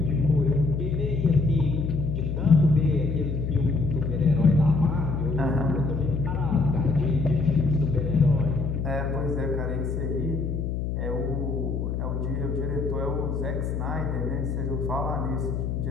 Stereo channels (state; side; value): noise; left; hum, 2 dB below the sound